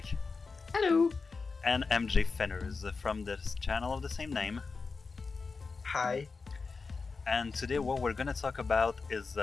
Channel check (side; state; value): right; quieter; 4.5 dB